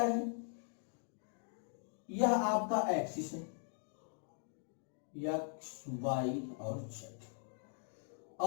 यह आपका एक्सिस है, एक्स वाई और जेड,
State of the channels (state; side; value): silent; right; 51 dB below the other